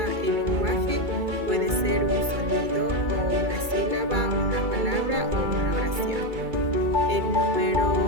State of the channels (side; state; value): left; late; 2.3 ms